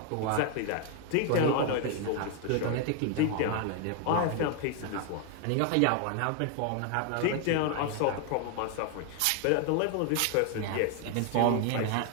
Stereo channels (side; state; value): both; different; correlation 0.00